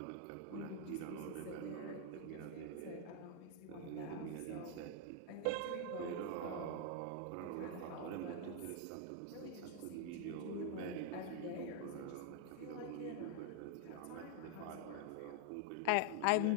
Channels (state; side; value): different; both; correlation 0.00